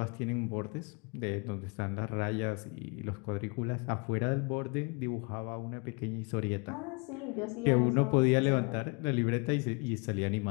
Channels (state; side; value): quieter; right; 32.2 dB